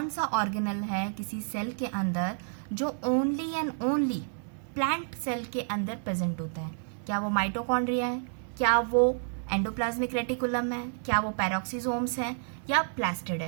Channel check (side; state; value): left; silent; 58 dB below the other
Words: सा ऑर्गेनल है किसी सेल के अंदर जो only and only plant cell के अंदर प्रेजेंट होता है, क्या वो माइटोकॉन्ड्रिया है, क्या वो एंडोप्लाज्मिक रेटिकुलम है, क्या वो पैरोक्सिसोम्स है या प्लास्टिड